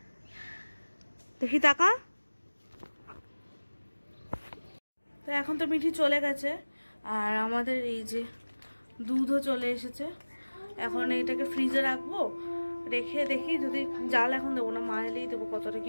দেখি টাকা। তো এখন তো মিঠি চলে গেছে, আর আমাদের এই যে দুধও চলে এসেছে। এখন এইটাকে ফ্রিজে রাখবো, রেখে দেখি যদি জাল এখন দেবো না, মা এলেই দেবো কতটা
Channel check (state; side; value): inverted; both; correlation -1.00